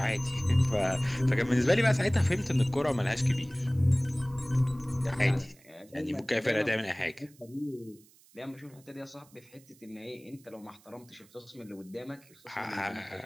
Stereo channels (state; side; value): noise; right; hiss, 27 dB below the sound